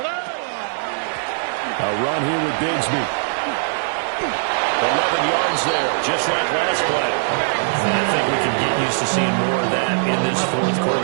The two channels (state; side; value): silent; left; digital silence